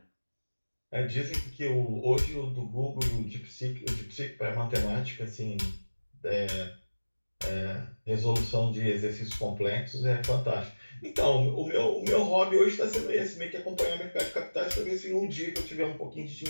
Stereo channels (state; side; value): inverted; both; correlation -1.00